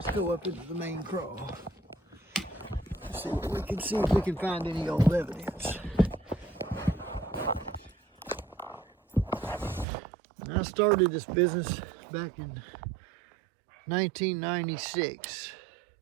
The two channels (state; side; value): drops out; left; at 9.9 s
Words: go up into the main crawl. See what we can see, if we can find any old evidence. I started this business back in 1996.